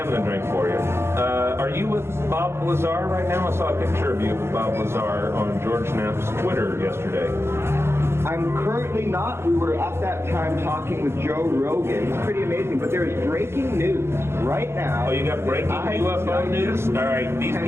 a drink for you. Are you with Bob Lazar right now? I saw a picture of you with Bob Lazar on George Knapp's Twitter yesterday. I'm currently not. We were at that time talking with Joe Rogan. It's pretty amazing, but there is breaking news right now. Oh, you got breaking UFO news? All right, these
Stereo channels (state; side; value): late; left; 0.12 ms